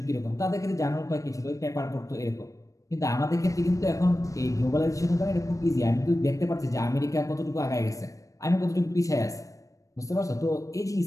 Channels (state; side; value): late; right; 0.16 ms